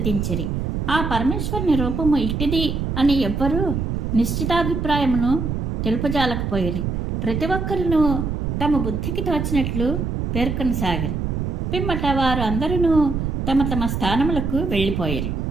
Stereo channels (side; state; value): right; noise; rumble, 2 dB below the sound